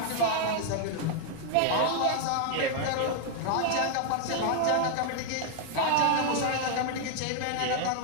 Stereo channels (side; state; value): both; different; correlation 0.00